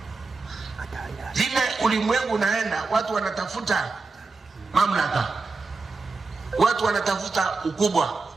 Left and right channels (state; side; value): quieter; left; 4.0 dB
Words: Vile ulimwengu unaenda, watu wanatafuta mamlaka, watu wanatafuta ukubwa.